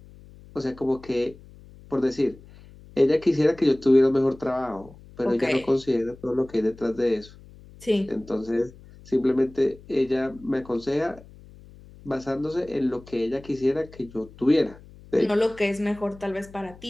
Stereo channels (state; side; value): noise; left; hum, 21 dB below the sound